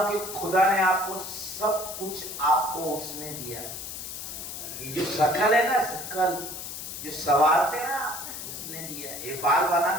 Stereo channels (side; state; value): left; noise; hiss, 8 dB below the sound